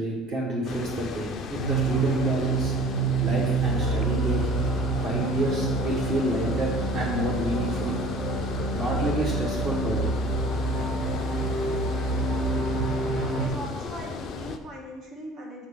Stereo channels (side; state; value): both; normal; correlation 0.46